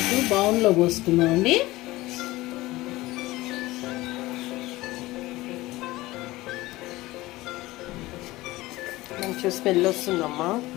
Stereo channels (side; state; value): right; quieter; 18.8 dB